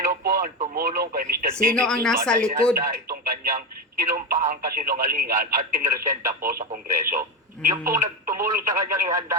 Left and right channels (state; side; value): normal; both; correlation 0.16